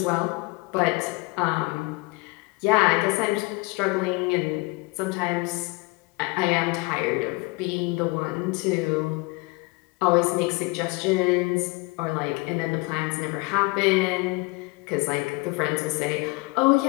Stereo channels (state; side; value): quieter; right; 25.7 dB